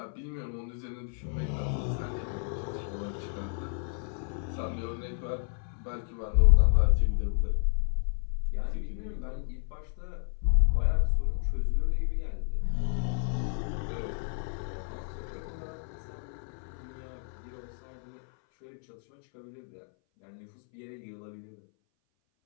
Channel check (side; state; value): right; silent; 57 dB below the other